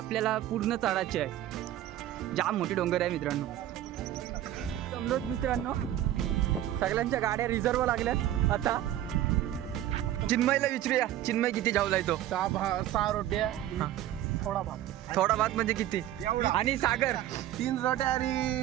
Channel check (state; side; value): quieter; left; 12.9 dB